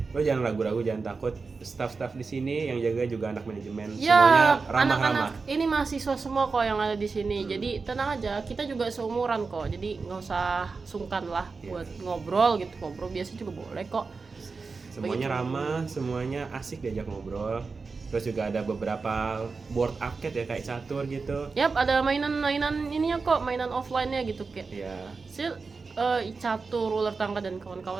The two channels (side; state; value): left; quieter; 4.4 dB